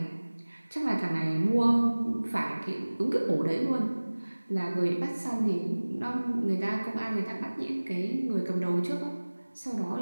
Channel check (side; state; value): both; inverted; correlation -1.00